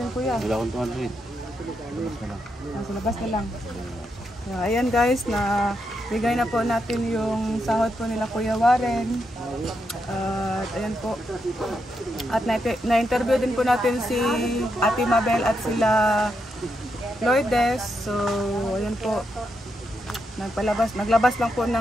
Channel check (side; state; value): both; normal; correlation 0.82